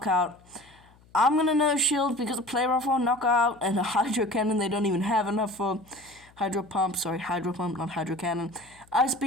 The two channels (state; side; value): noise; left; hum, 28 dB below the sound